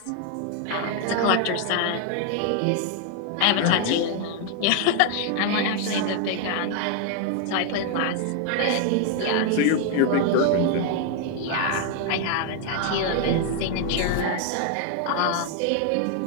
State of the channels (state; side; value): different; both; correlation 0.00